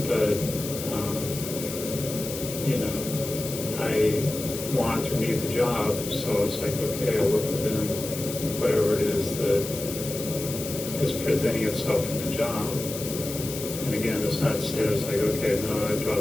but, you know, I want to leave the job, so it's like, okay, I work within whatever it is that is presenting itself in the job. And again, it's not said as like, okay, no, I draw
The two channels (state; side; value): noise; left; hiss, 8 dB below the sound